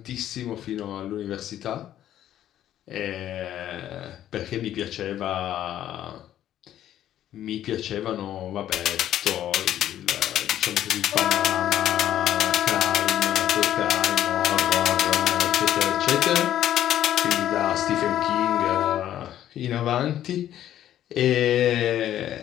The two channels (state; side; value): quieter; right; 11.8 dB